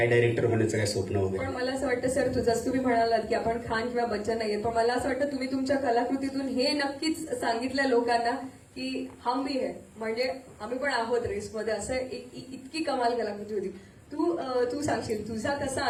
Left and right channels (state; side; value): identical; both; correlation 1.00